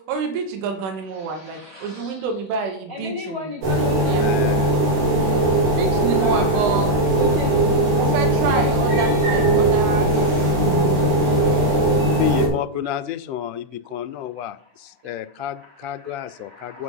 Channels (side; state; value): left; late; 16 ms